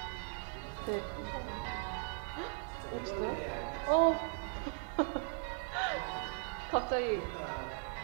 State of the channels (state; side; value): silent; left; 52 dB below the other